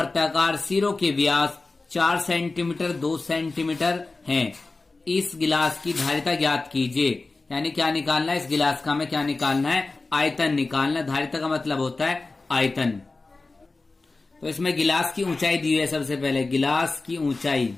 सिरों के व्यास 4 सेंटीमीटर 2 सेंटीमीटर हैं। इस गिलास की धारिता ज्ञात कीजिए। यानी क्या निकालना है? इस गिलास का हमें क्या निकालना है? आयतन निकालना है। धारिता का मतलब होता है आयतन। तो इसमें गिलास की ऊंचाई दी हुई है। सबसे पहले गिलास की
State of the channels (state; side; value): quieter; right; 3.5 dB